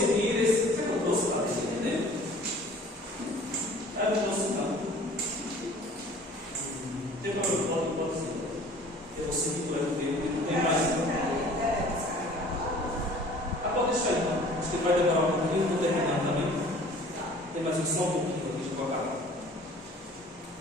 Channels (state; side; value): normal; both; correlation 0.49